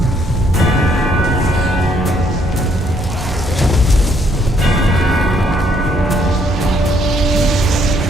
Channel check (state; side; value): normal; both; correlation 0.68